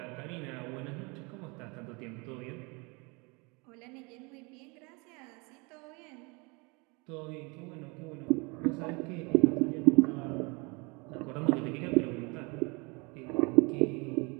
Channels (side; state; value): left; quieter; 29.0 dB